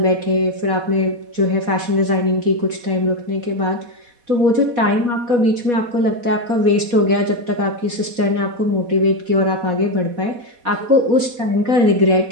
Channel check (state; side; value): late; left; 4.1 ms